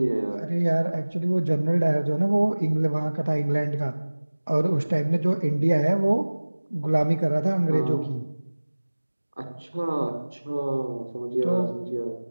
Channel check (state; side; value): inverted; both; correlation -1.00